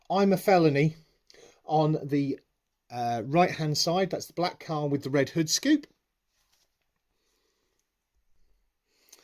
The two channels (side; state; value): both; identical; correlation 1.00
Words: I'm a Felony on the right-hand side. That's the black car with the red hood scoop.